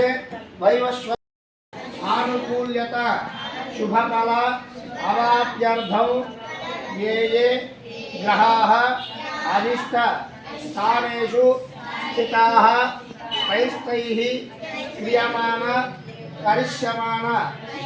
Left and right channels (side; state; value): both; identical; correlation 1.00